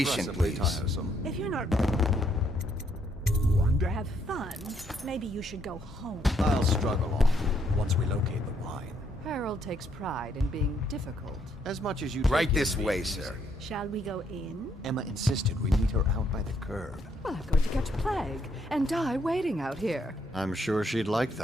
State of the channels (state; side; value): normal; both; correlation 0.72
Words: please. tiresome. If you're not to have fun, maybe you should go home. I'll struggle on once we locate the wine. Harold takes pride in being difficult. As much as you Right take in this being way, easy. sir. Shall we go in? Emma insisted we meet her out by the curb. Well, I'm going to catch plague and die waiting out here. I'm sure she'd like